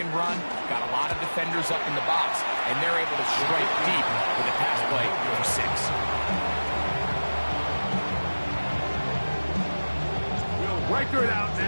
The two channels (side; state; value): both; inverted; correlation -1.00